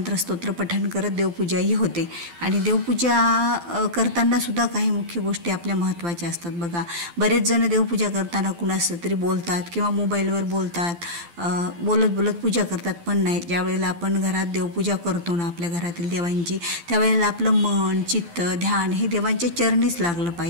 पठण करत देवपूजाही होते. आणि देवपूजा करतानासुद्धा काही मुख्य गोष्टी आपल्या महत्त्वाच्या असतात. बघा, बरेच जण देवपूजा करताना कुणाचं तरी बोलतात किंवा मोबाईलवर बोलतात, बोलत बोलत पूजा करतात. पण नाही, ज्या वेळेला आपण घरात देवपूजा करतो ना आपल्या घरातील देवांची, त्यावेळेला आपलं मन, चित्त, ध्यान हे देवांच्या चरणीच लागलं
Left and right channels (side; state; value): left; late; 12 ms